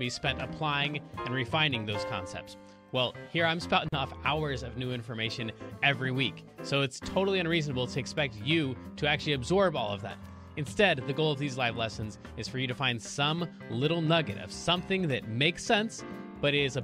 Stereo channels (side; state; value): both; identical; correlation 1.00